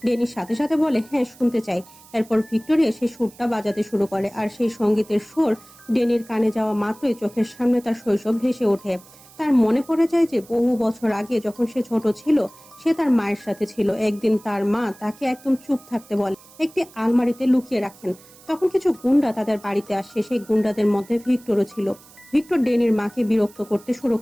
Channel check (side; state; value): right; noise; hiss, 24 dB below the sound